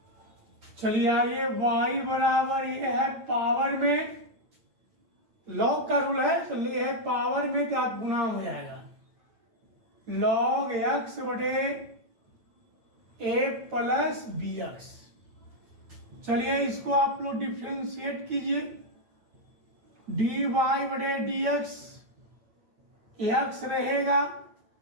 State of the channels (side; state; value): left; late; 9.0 ms